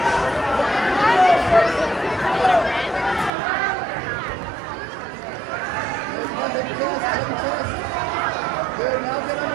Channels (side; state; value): left; drops out; at 3.3 s